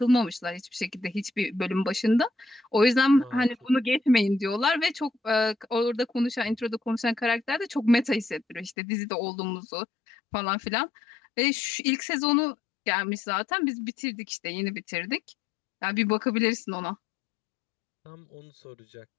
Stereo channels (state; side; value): drops out; right; at 8.8 s